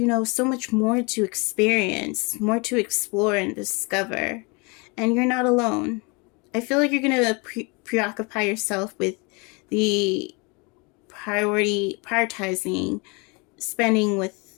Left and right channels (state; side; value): quieter; right; 29.9 dB